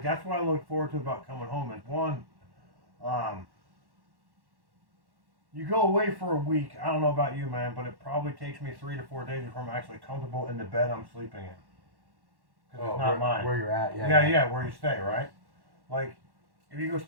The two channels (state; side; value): late; left; 1.1 ms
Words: that's what I look forward to about coming home. Is one, you go away for a week. I don't know about you, man, but it probably takes me 3 to 4 days before I'm actually comfortable in the bed I'm sleeping in. Because it's not mine. Where you're at, Yeah, where you stay, right? Like, if you go